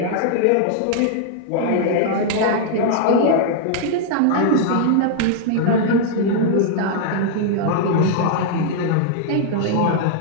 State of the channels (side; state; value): both; different; correlation -0.01